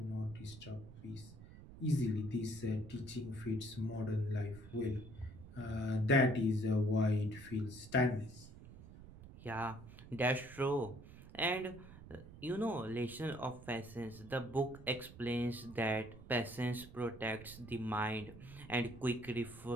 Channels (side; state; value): right; noise; rumble, 16 dB below the sound